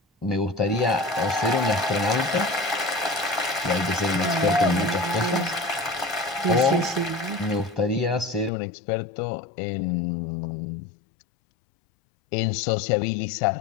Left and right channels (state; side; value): drops out; right; at 8.5 s